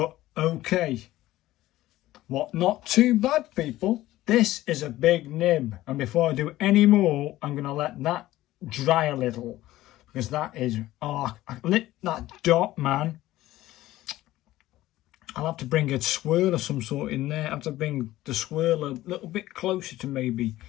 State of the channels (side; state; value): right; quieter; 15.9 dB